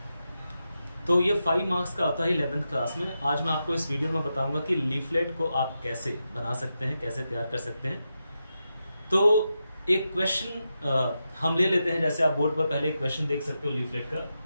तो ये 5 मार्क्स का होता है 11th क्लास में। आज मैं आपको इस वीडियो में बताऊंगा कि लीफलेट को आप कैसे बना सकते हैं, कैसे तैयार कर सकते हैं। तो एक क्वेश्चन हम ले लेते हैं। जैसे आप बोर्ड पर पहले एक क्वेश्चन देख सकते हो लीफलेट का,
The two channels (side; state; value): both; inverted; correlation -0.88